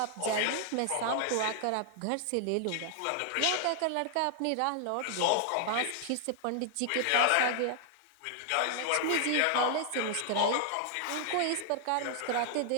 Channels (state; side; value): different; both; correlation 0.00